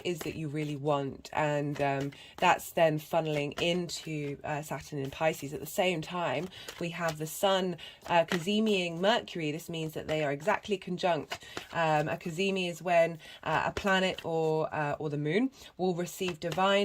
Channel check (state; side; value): identical; both; correlation 1.00